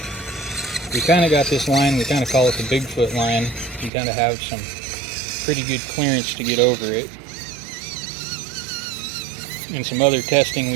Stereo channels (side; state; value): left; drops out; at 3.9 s